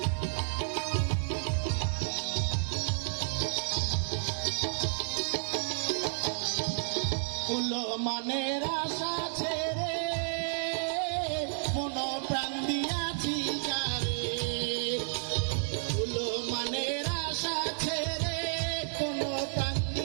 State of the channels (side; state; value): left; silent; digital silence